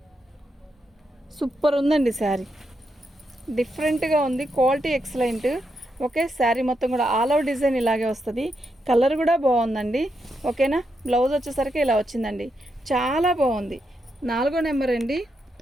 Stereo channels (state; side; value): normal; both; correlation 0.83